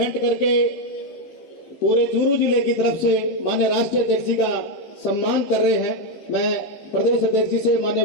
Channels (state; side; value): late; right; 15 ms